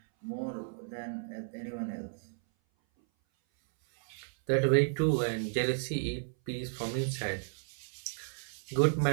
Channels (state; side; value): silent; left; 56 dB below the other